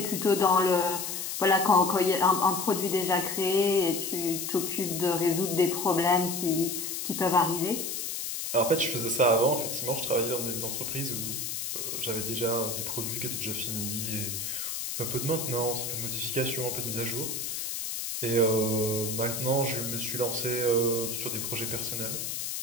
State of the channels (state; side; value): noise; left; hiss, 4 dB below the sound